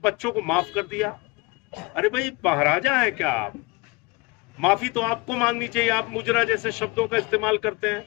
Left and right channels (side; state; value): right; quieter; 25.1 dB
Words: बच्चों को माफ कर दिया। अरे भाई, महाराजा है क्या आप? माफी तो आपको मांगनी चाहिए। आप मुजरा जैसे शब्दों का इस्तेमाल करते हैं।